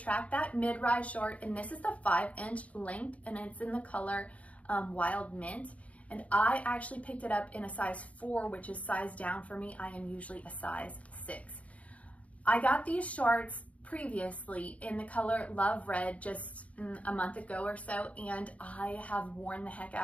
That Mid-Rise short, and this is the 5-inch length, and it's in the color Wild Mint. And I actually picked it up in a size 4, which is size down for me. I am usually a size 6. I got these shorts previously in the color Love Red just a month ago or so, and I have worn the heck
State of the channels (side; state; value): right; late; 0.067 ms